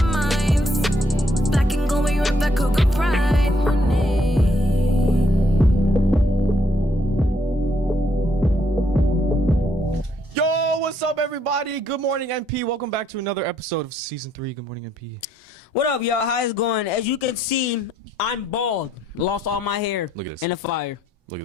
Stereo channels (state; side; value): normal; both; correlation 0.71